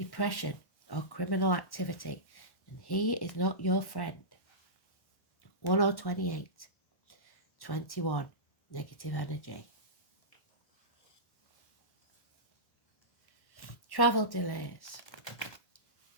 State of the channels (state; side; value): late; right; 1.1 ms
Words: or criminal activity. And he is not your friend. 1028, 21, negative energy. Travel delays